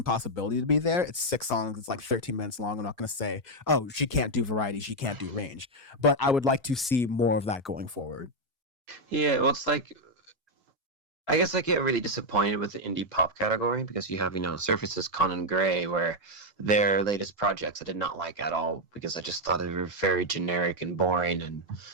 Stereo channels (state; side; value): normal; both; correlation 0.01